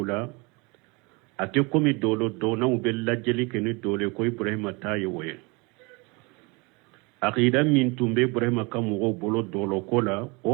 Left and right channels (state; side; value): quieter; left; 28.1 dB